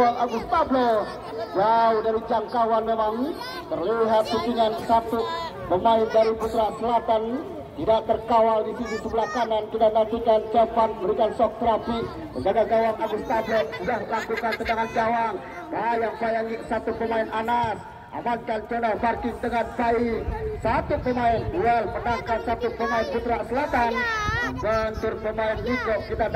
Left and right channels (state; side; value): identical; both; correlation 1.00